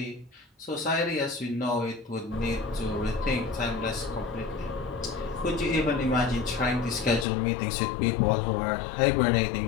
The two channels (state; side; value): drops out; right; at 7.2 s